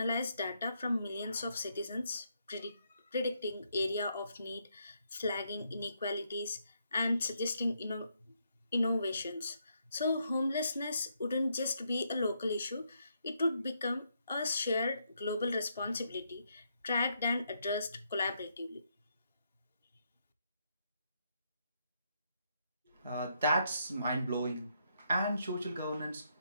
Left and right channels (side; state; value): both; inverted; correlation -0.77